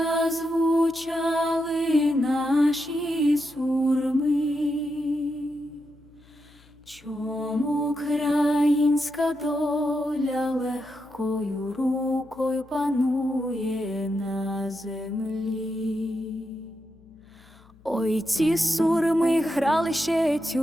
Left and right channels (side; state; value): left; noise; hum, 27 dB below the sound